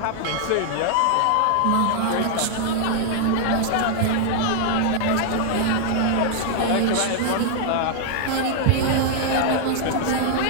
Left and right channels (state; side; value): different; both; correlation -0.01